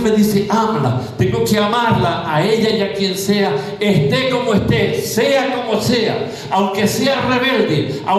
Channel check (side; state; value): both; identical; correlation 1.00